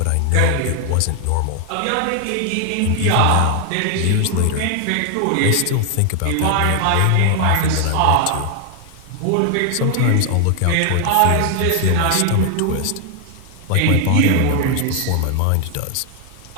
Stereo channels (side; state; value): both; different; correlation 0.00